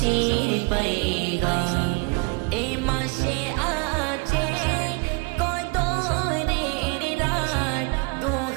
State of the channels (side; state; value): left; quieter; 31.3 dB